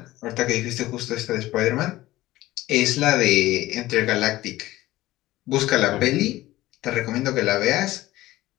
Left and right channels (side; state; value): right; quieter; 16.8 dB